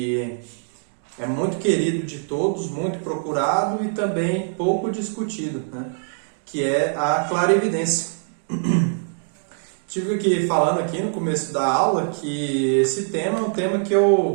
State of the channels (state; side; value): silent; left; digital silence